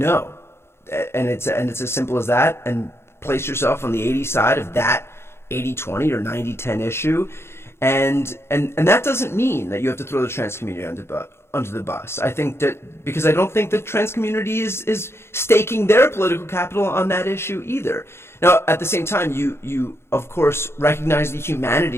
And it's as simple as that, and place yourself on the 80 side of that 80-20 or 90-10 issue. And that doesn't mean that you have to throw the trans community under the bus. I think that because I don't think the trans community is staking their political capital on that issue either. Now, at the same time, you of course recognize the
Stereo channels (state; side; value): late; right; 0.12 ms